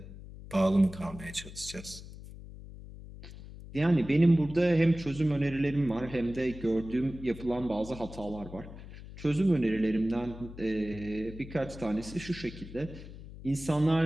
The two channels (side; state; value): left; noise; hum, 14 dB below the sound